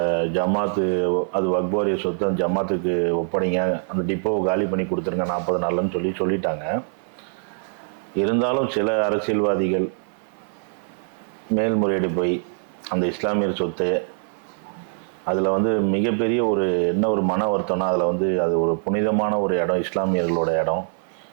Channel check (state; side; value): silent; left; 63 dB below the other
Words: ஜமாத்து அது வக்பாரிய சொத்தை ஜமாத்துக்கு ஒப்படைங்க, அந்த டிப்போவை காலி பண்ணி கொடுத்துருங்க 40 நாள்னு சொல்லிட்டாங்க. இருந்தாலும் சில அரசியல்வாதிகள் மேல்முறையீடு போய் அந்த இஸ்லாமியர் சொத்து அதில் வந்து மிகப்பெரிய ஒரு மன வருத்தம்னா, அதில் வந்து அது ஒரு புனிதமான ஒரு இடம், இஸ்லாமியர்களோட இடம்.